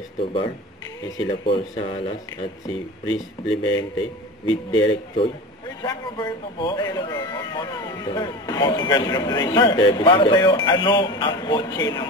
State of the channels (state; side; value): normal; both; correlation 0.31